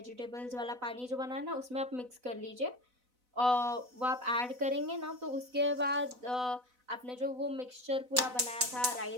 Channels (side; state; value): left; late; 4.0 ms